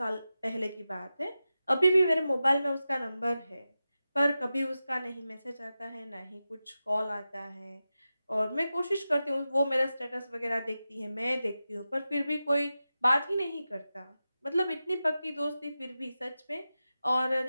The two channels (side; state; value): both; inverted; correlation -0.93